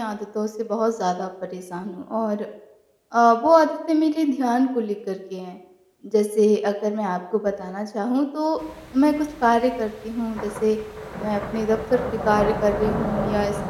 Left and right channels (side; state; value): both; identical; correlation 1.00